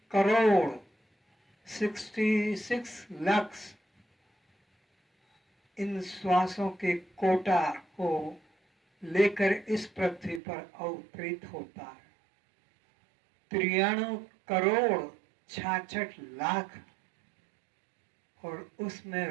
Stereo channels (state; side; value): drops out; left; at 10.4 s